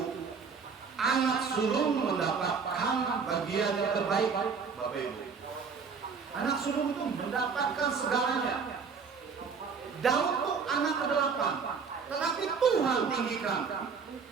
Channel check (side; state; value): left; quieter; 5.6 dB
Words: anak sulung mendapatkan bagian yang terbaik, Bapak Ibu. Anak sulung itu mendapatkan segalanya. Daud itu anak ke-8, tetapi Tuhan tinggikan.